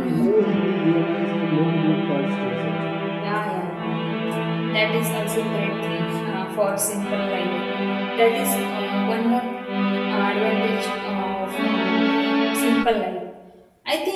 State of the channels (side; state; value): both; identical; correlation 1.00